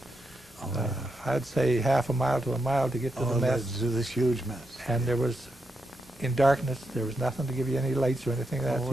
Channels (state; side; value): normal; both; correlation 0.83